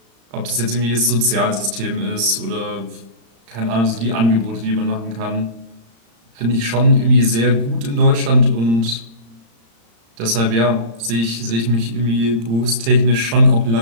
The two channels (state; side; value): late; left; 35 ms